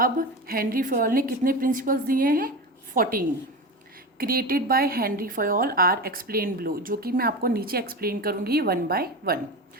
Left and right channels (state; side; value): normal; both; correlation 0.24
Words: हेनरी फयोल ने कितने प्रिंसिपल्स दिए हैं? 14। Created by Henri Fayol are explain below, जो कि मैं आपको नीचे एक्सप्लेन करूंगी 1 बाय 1।